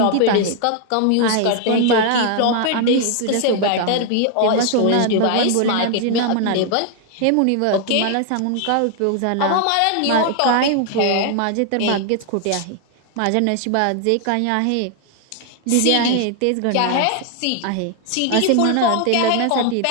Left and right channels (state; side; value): different; both; correlation 0.00